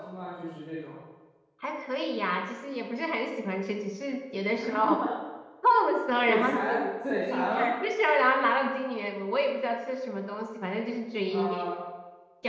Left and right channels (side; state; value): both; identical; correlation 1.00